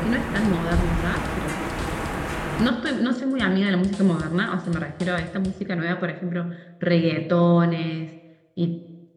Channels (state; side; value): identical; both; correlation 1.00